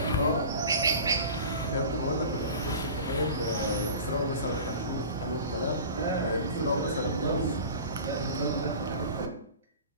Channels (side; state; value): both; inverted; correlation -0.37